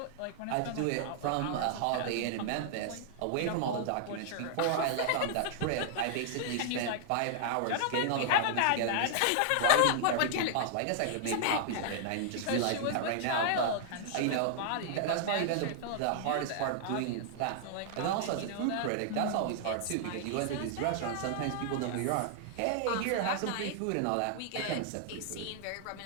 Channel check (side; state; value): both; different; correlation -0.01